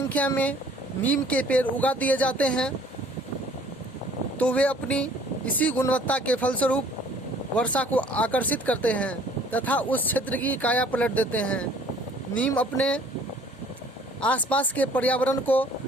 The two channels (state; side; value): normal; both; correlation 0.55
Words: में नीम के पेड़ उगा दिए जाते हैं तो वे अपनी इसी गुणवत्ता के फलस्वरूप वर्षा को आकर्षित करते हैं तथा उस क्षेत्र की काया पलट देते हैं। नीम अपने आसपास के पर्यावरण को